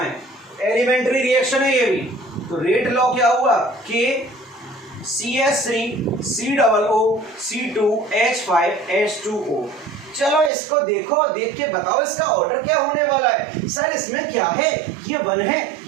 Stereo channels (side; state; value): left; drops out; at 10.5 s